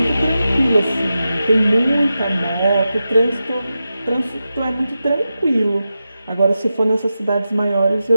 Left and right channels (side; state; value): both; inverted; correlation -0.91